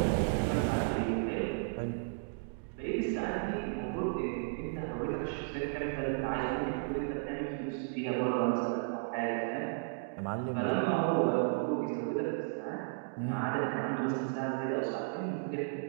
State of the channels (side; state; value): left; silent; digital silence